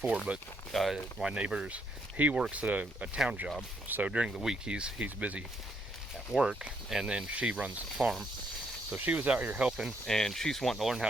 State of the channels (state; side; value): normal; both; correlation 0.73